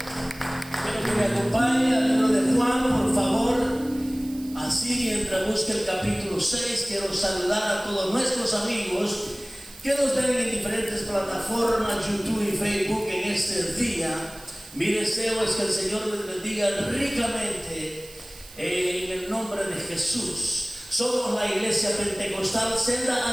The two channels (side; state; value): right; noise; hiss, 19 dB below the sound